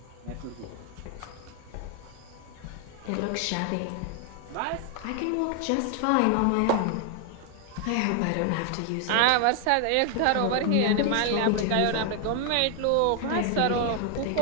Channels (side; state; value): both; different; correlation 0.00